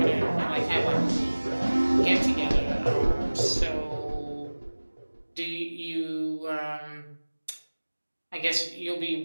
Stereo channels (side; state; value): both; inverted; correlation -1.00